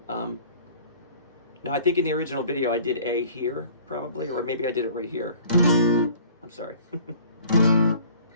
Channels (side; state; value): both; inverted; correlation -0.51